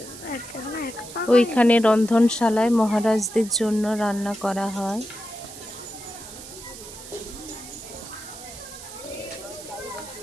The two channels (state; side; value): noise; right; hiss, 14 dB below the sound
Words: ওইখানে রন্ধনশালায় মহারাজদের জন্য রান্না করা হয়।